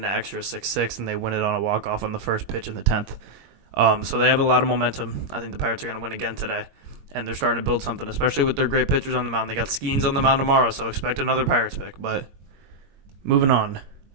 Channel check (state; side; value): late; left; 21 ms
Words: extra 6-6, and they win it on a walk-off on the first pitch in the 10th. So they have a lot of momentum. I think the Pirates are going to win again today. And they're starting to build something, especially with their great pitchers on the mound. They got Skeens on the mound tomorrow, so expect another Pirates pick. But moving on